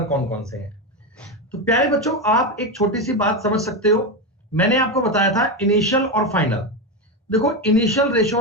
कौन कौन से हैं। तो प्यारे बच्चों आप एक छोटी सी बात समझ सकते हो, मैंने आपको बताया था इनिशियल और फाइनल। देखो इनिशियल रेशो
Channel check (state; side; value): normal; both; correlation 0.13